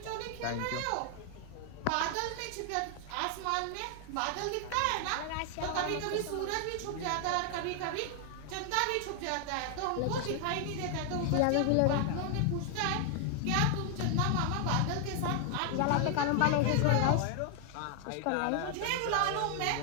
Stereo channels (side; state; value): both; different; correlation 0.00